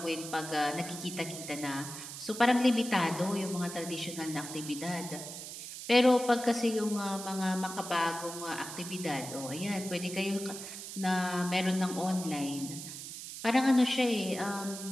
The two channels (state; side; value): noise; right; hiss, 10 dB below the sound